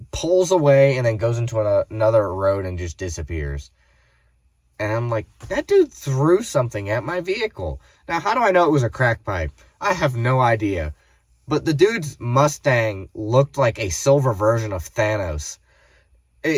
pulls away and then goes into another road and just disappears. And I'm like, that dude threw something at my vehicle. Now, how do I know it was a crack pipe? I have no idea. But the dude's Mustang looked like a silver version of Thanos.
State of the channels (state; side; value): identical; both; correlation 1.00